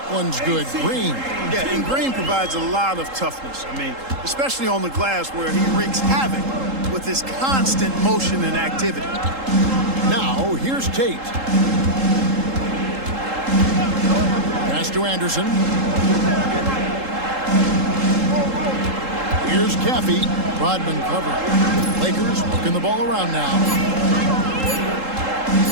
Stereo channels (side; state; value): left; late; 3.8 ms